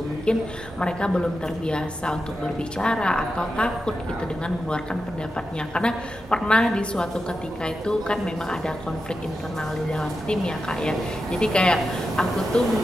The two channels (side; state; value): both; normal; correlation 0.89